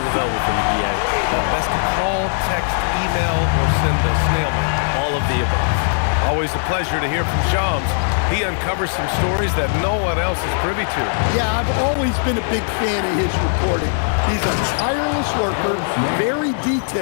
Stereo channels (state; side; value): silent; right; digital silence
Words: available for you, B.A. Best to call, text, email, or send a snail mail. All of the above. Always a pleasure to hear from Shams. He uncovers some stories that no one else is privy to. Yeah, I've always been a big fan of his reporting. He's a tireless worker, very